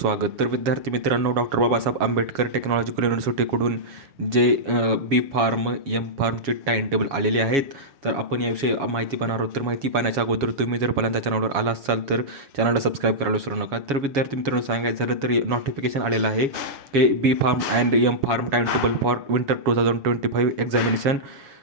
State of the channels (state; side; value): late; left; 7.2 ms